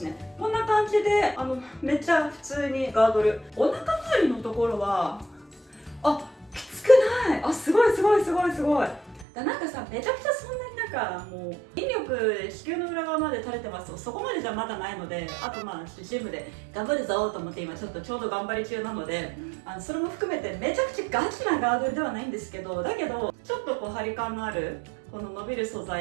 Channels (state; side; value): drops out; left; at 9.2 s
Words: ね。こんな感じでめっちゃ普通にガードル、お腹周りのところはきつくない。すごいなんかさ、めちゃくちゃそんなになんかもう筋力子宮の裏側まで垂れてますと、そこまでじゃまだないので、あとまあジムで頑張るぞと思って今ちょっと頑張り中なので、それも含めてめちゃくちゃガチなガードルではないんですけど、だけどちょっとこう張り感のあるこの伸びる素